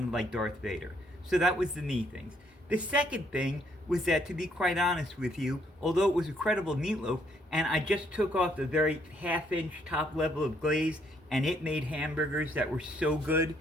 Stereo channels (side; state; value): both; normal; correlation 0.69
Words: like Darth Vader. So that was the knee things. The second thing was that, to be quite honest with you, although it was incredible Meatloaf, and I just took off the very half-inch top level of glaze, and it made hamburgers that were so good,